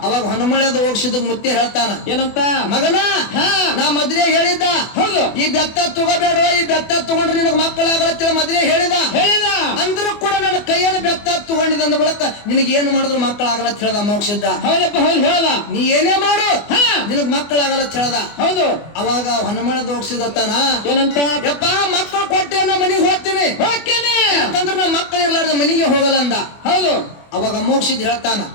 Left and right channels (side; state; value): right; late; 24 ms